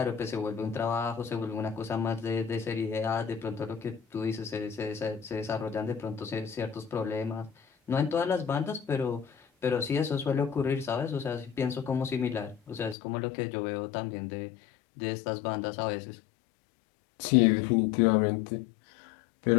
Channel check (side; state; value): right; drops out; at 13.0 s